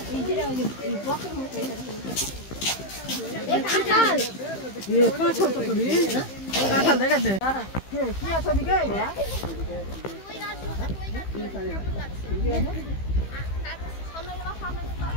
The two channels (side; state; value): right; late; 15 ms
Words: এই কাঁঠাল ये काठल तो भी काठल देखा दे কি আছে দিকে